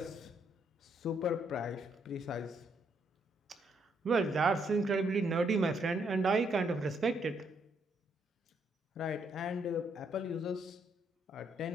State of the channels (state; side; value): normal; both; correlation 0.73